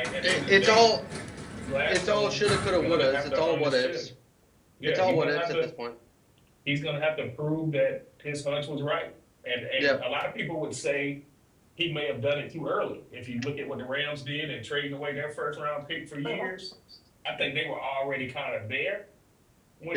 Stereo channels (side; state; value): both; identical; correlation 1.00